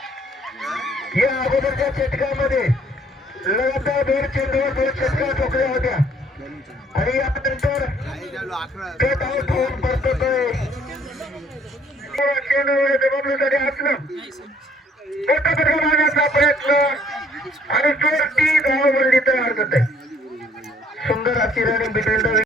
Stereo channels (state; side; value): normal; both; correlation 0.61